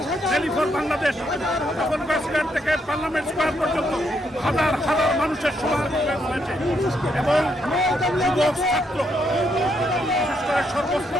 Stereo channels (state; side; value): normal; both; correlation 0.76